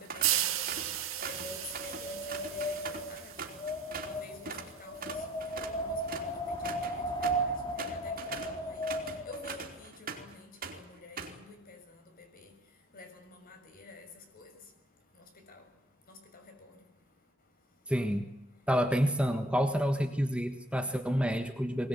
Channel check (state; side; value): normal; both; correlation 0.55